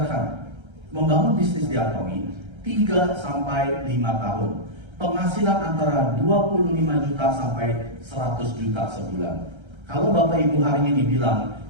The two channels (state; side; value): late; left; 1.3 ms